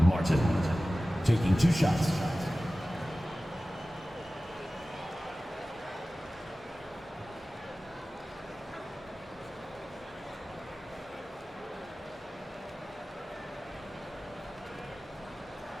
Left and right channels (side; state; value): both; normal; correlation 0.96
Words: Martin, taking 2 shots.